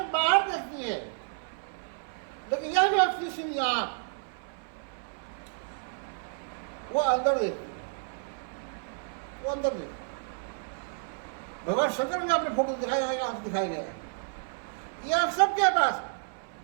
बाहर देखती है, लेकिन यह व्यक्ति सिर्फ आंख वो अंदर देखती है, वो अंदर देखती है। भगवान शंकर ने अपने फोटो दिखाया है, आंख दिखाया गया है। ये आप सबके पास है।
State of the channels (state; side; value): silent; left; 57 dB below the other